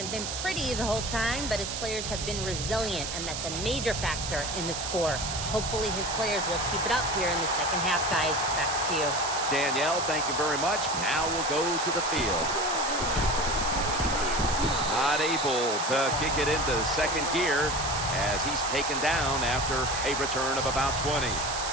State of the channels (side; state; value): right; noise; hiss, 5 dB below the sound